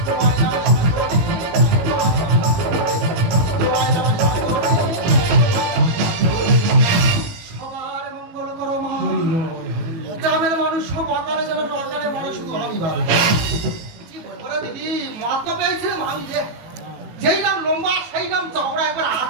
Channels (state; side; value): late; left; 18 ms